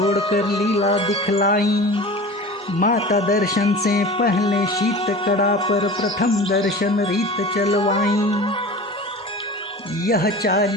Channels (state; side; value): normal; both; correlation 0.36